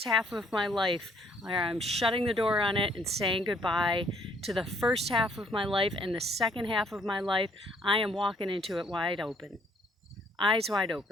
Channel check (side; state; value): both; normal; correlation 0.66